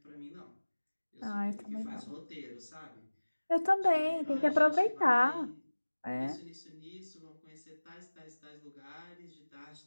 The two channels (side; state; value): both; inverted; correlation -1.00